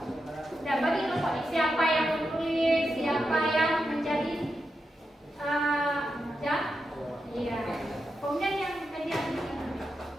apa yang menjadi jam? Iya. Kemudian yang median ini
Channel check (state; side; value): normal; both; correlation 0.87